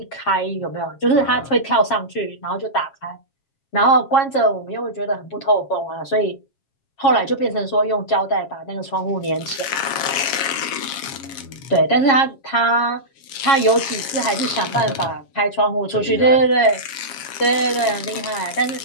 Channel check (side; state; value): right; late; 7.3 ms